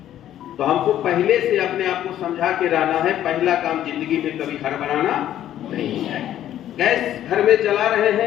तो हमको पहले से अपने आप को समझा के रहना है। पहला काम जिंदगी में कभी हड़बड़ाना नहीं है। गैस घर में जला रहे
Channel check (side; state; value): right; quieter; 11.8 dB